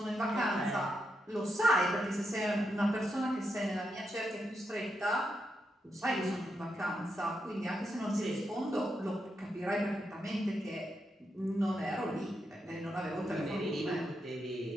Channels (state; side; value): normal; both; correlation 0.83